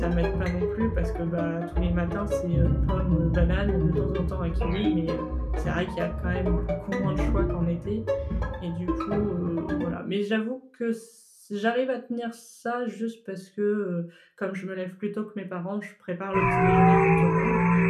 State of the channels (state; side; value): identical; both; correlation 1.00